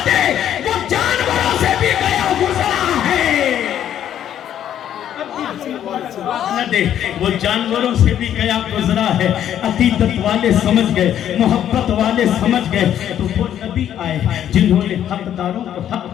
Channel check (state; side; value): quieter; right; 10.5 dB